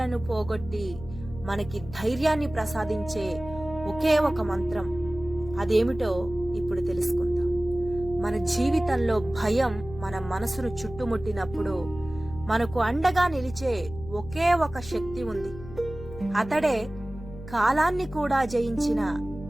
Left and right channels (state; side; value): noise; left; hum, 13 dB below the sound